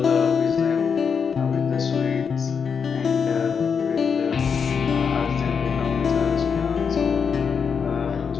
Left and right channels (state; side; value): quieter; right; 6.3 dB